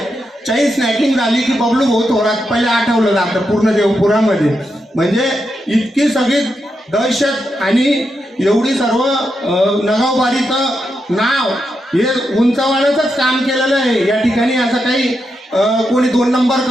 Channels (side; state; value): both; normal; correlation 0.85